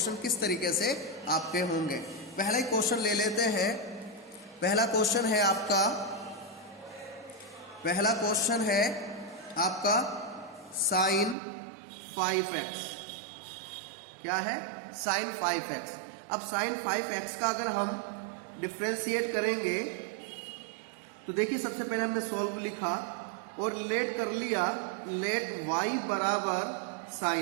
किस तरीके से आपके होंगे। पहला ही क्वेश्चन ले लेते हैं। पहला क्वेश्चन है आपका sin 5x। क्या है? sin 5x। अब sin 5x का अगर हम डिफ्रेंशिएट करेंगे तो देखिए, सबसे पहले हमने सॉल्व लिखा और लेट कर लिया, लेट y बराबर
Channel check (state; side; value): drops out; left; at 11.4 s